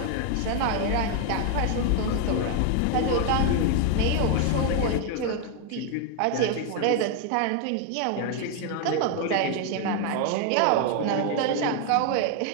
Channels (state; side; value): different; both; correlation 0.00